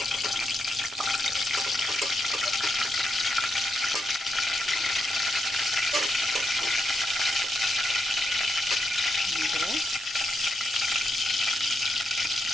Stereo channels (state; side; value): normal; both; correlation 0.82